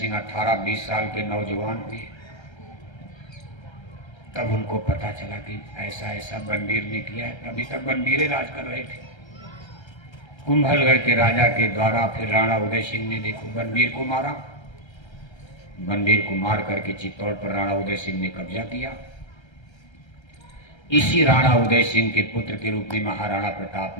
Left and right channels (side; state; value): right; late; 1.3 ms